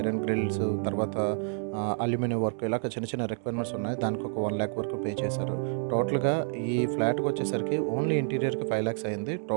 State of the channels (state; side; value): silent; left; 59 dB below the other